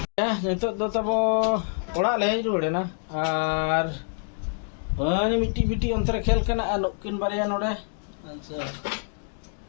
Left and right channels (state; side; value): silent; right; 61 dB below the other